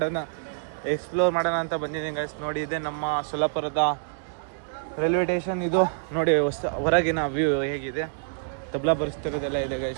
ಮಾಡೋಣ ಅಂತ ಬಂದಿದ್ದೀನಿ ಗೈಸ್. ನೋಡಿ ಇದೆ ನಮ್ಮ ಸೊಲ್ಲಾಪುರದ ರೈಲ್ವೆ ಸ್ಟೇಷನ್. ಇದು ನೋಡಿ ಹೊರಗಿನ ವ್ಯೂ ಹೇಗಿದೆ. ತಬ್ಲಾ ಪರಿಸ್ಥಿತಿದೆಲ್ಲ ಇದೆ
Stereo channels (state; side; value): silent; left; digital silence